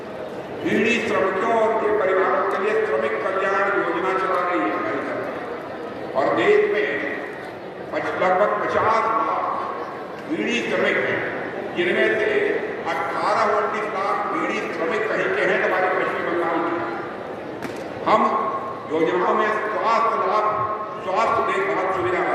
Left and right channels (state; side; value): identical; both; correlation 1.00